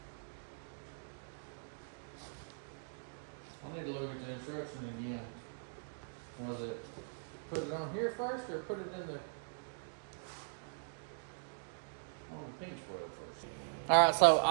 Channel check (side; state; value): left; silent; digital silence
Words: I need to look at the instruction again. Was it put it on here first or put it in the pinch weld first? Alright, so